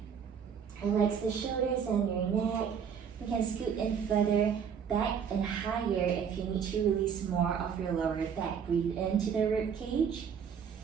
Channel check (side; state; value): left; quieter; 7.3 dB